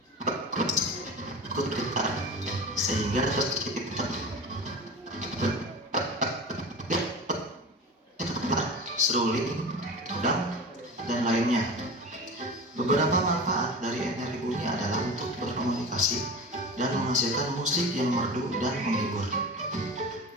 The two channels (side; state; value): both; normal; correlation 0.32